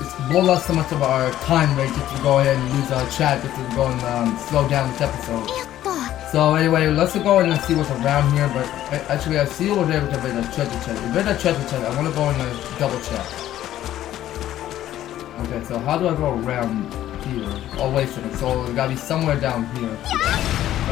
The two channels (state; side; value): quieter; right; 12.8 dB